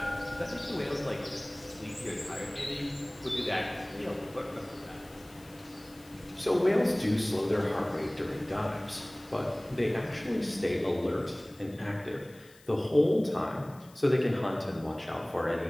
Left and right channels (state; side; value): noise; left; hiss, 25 dB below the sound